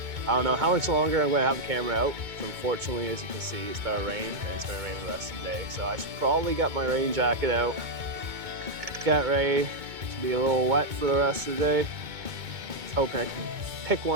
I don't know how much longer I'm going to have the camera out. So unfortunately, as you can see, it's going to rain, and it's going to rain the rest of the day. So I should probably get my rain jacket out, get ready to be a little wet for the rest of the day. Just hoping I can pick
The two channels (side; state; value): left; late; 2.2 ms